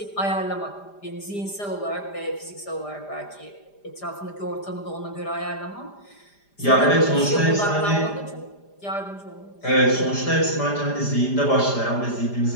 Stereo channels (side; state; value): right; late; 5.0 ms